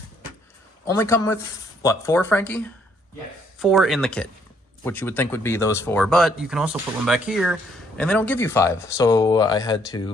only come with, what, 4, Frankie? Yes. 4 in the kit, which you would think would be those 4, but you can also put one back here, and they don't give you 5. So I had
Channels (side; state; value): both; normal; correlation 0.67